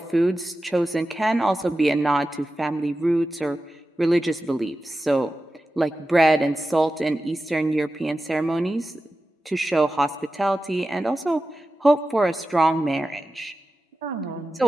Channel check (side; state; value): both; normal; correlation 0.93